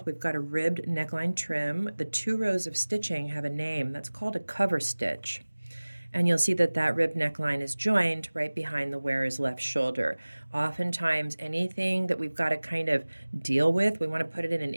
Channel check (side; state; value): both; inverted; correlation -1.00